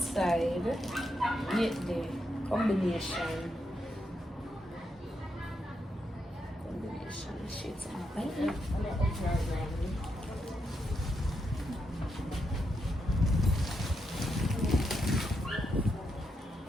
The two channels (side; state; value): both; normal; correlation 0.82